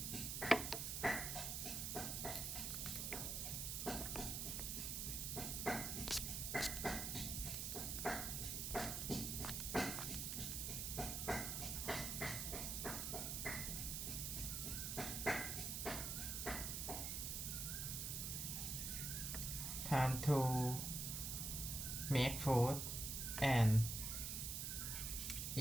Time to make food and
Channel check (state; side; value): noise; right; hiss, 2 dB below the sound